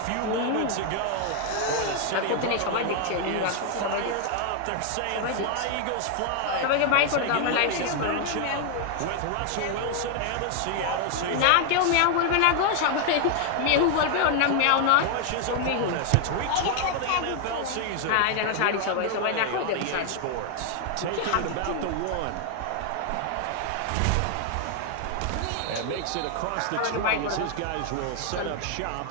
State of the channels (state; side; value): different; both; correlation 0.00